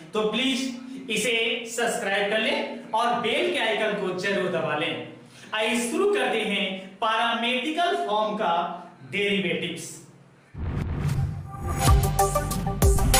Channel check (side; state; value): both; identical; correlation 1.00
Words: तो प्लीज इसे सब्सक्राइब कर लें और बेल के आइकन को जरूर दबा लें। आइए शुरू करते हैं पैरामेट्रिकल फॉर्म का डेरिवेटिव्स।